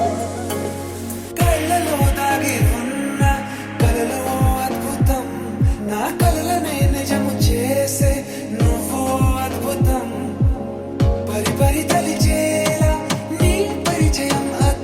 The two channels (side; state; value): both; identical; correlation 1.00